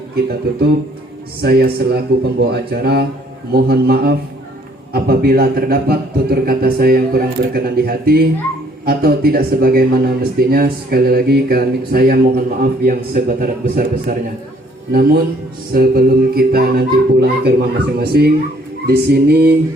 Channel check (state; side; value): normal; both; correlation 0.62